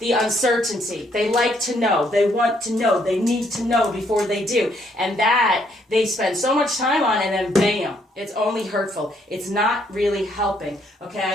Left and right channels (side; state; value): both; normal; correlation 0.70